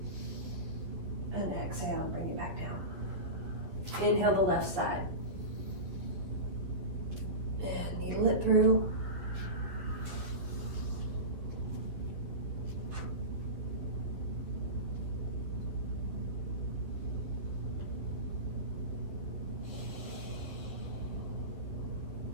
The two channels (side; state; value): left; late; 11 ms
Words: and exhale, bring it back down. Inhale the left side. And needle it through.